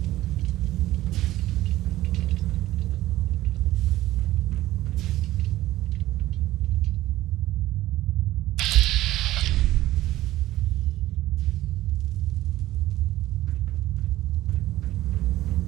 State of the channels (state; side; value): quieter; left; 15.6 dB